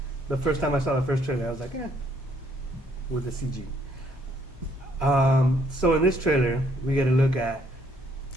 The first time I saw the first trailer, I was like, with the CG. So in this trailer, we get a look at,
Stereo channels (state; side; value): normal; both; correlation 0.67